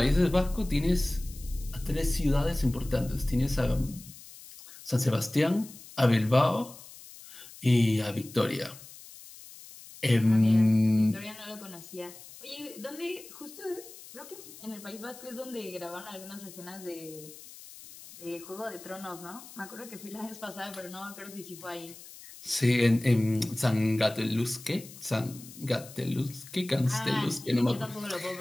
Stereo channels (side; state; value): left; noise; hiss, 17 dB below the sound